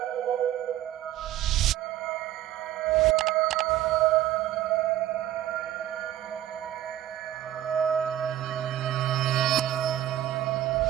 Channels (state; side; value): quieter; left; 12.7 dB